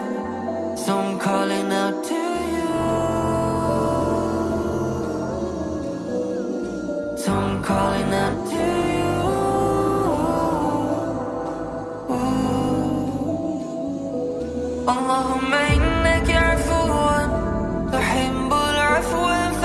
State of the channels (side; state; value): both; identical; correlation 1.00